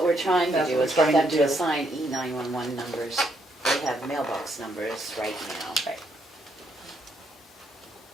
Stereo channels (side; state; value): both; normal; correlation 0.74